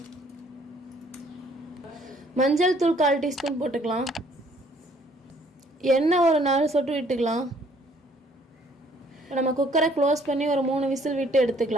மஞ்சள் தூள் 1/4 டீஸ்பூன் போட்டுக்கலாம். எண்ணெய் ஒரு 4 சொட்டு விட்டுக்கலாம். நம்ம குக்கரை க்ளோஸ் பண்ணி ஒரு 3 விசில் விட்டு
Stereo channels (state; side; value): normal; both; correlation 0.62